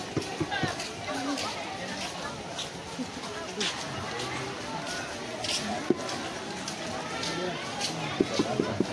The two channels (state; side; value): identical; both; correlation 1.00